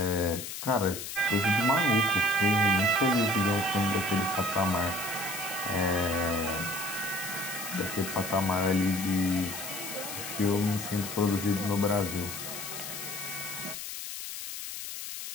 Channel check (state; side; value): noise; left; hiss, 7 dB below the sound